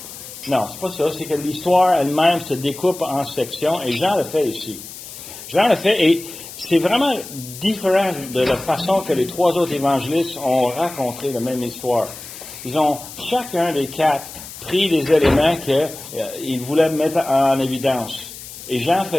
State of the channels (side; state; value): left; noise; hiss, 14 dB below the sound